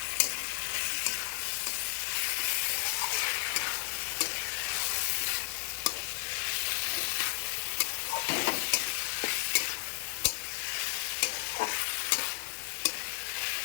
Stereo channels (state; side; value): silent; right; 56 dB below the other